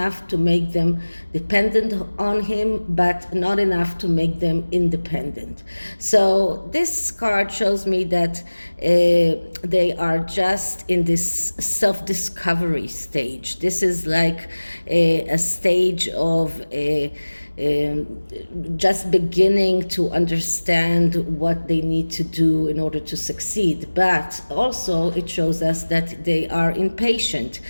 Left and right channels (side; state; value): both; inverted; correlation -1.00